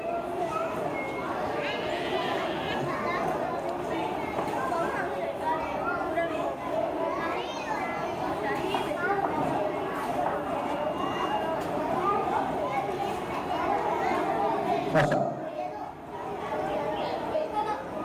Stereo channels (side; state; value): both; identical; correlation 1.00